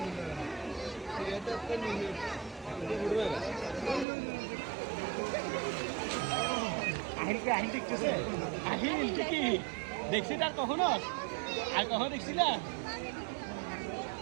দেখছি তার কখনো আর কখনো দেখছি না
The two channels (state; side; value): drops out; left; at 4.0 s